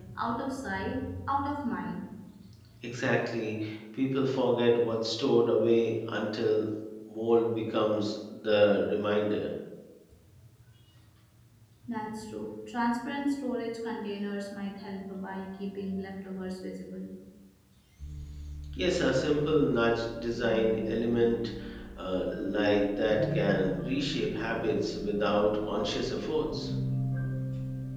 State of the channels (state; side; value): identical; both; correlation 1.00